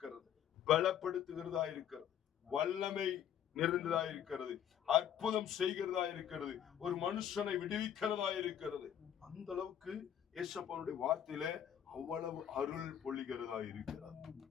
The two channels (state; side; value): quieter; right; 9.7 dB